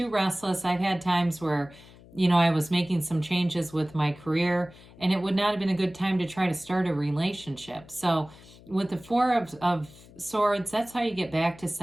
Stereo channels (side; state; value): left; noise; hum, 22 dB below the sound